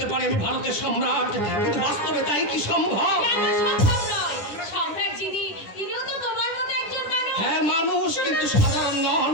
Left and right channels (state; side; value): late; right; 10 ms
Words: পারে আমি ভারতের সম্রাট, কিন্তু বাস্তবে তাই কি সম্ভব? কেন সম্ভব নয়? সম্রাট যিনি, তিনিও তো তোমার মতো একজন মানুষ। হ্যাঁ মানুষ, কিন্তু সাধারণ নন,